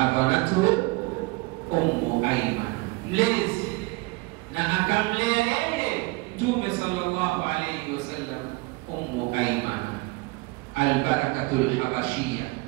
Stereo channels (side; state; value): left; quieter; 24.5 dB